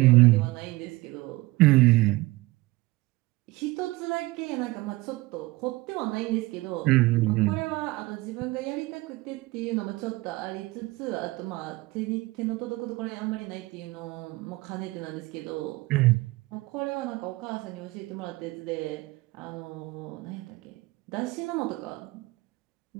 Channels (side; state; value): left; quieter; 21.3 dB